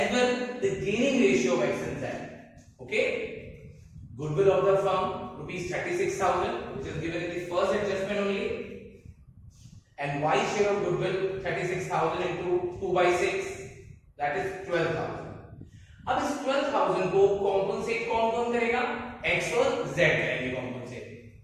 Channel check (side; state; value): both; identical; correlation 1.00